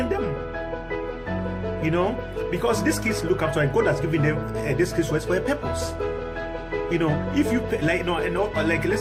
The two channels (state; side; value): identical; both; correlation 1.00